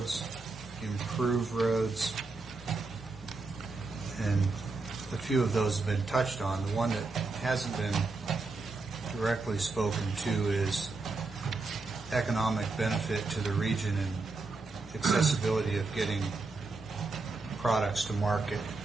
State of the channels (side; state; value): left; quieter; 3.7 dB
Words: improve roads, and a few of those have been touched on. The one that hasn't been directly spoken to is economic benefit to the region and accessibility of getting products to market.